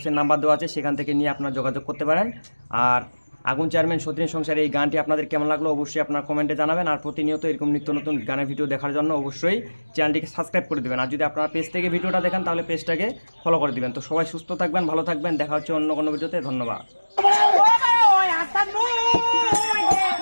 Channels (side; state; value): both; inverted; correlation -1.00